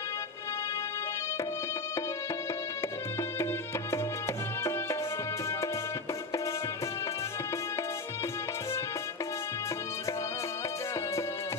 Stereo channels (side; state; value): right; quieter; 3.6 dB